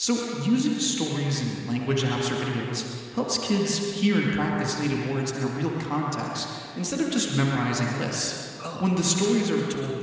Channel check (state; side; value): identical; both; correlation 1.00